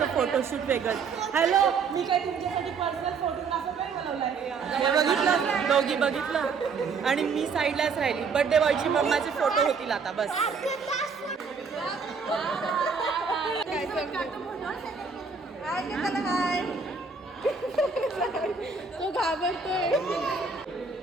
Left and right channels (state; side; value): quieter; left; 5.2 dB